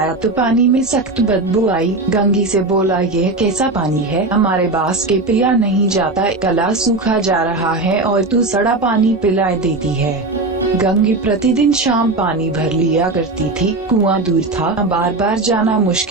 तो पानी में सख्त बदबू आई। गंगी से बोला, यह कैसा पानी है, हमारे बास के पिया नहीं जाता, गला सूखा जा रहा है और तू सड़ा पानी पिला देती है। गंगी प्रतिदिन शाम पानी भर लिया करती थी। कुआं दूर था, बार बार जाना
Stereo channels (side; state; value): left; quieter; 3.1 dB